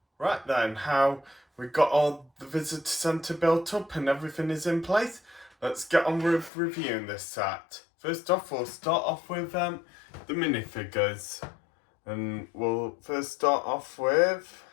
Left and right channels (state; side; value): drops out; right; at 6.5 s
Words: Right then, how we got all the visitor centre built up and everything is in place. Let's get on with reviewing this set. First off, we'll start off with the minifigures. And we'll first start off with